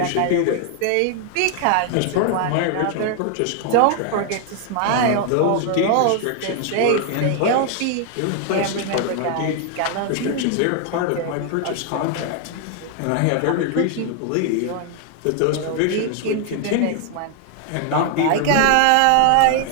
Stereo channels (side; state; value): both; different; correlation 0.00